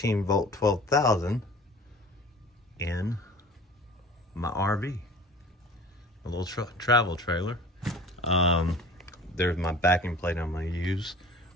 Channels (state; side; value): normal; both; correlation 0.43